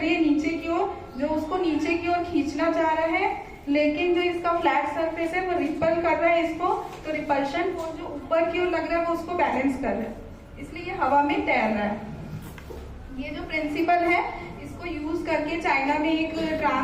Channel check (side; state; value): both; identical; correlation 1.00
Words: है नीचे की ओर, जो उसको नीचे की ओर खींचना चाह रहा है, लेकिन जो इसका फ्लैट सरफेस है वो रिपल कर रहा है इसको। तो रिपल्शन फोर्स जो ऊपर की ओर लग रहा है वो उसको बैलेंस कर रहा है, इसलिए ये हवा में तैर रहा है। ये जो प्रिंसिपल है इसको यूज करके चाइना में एक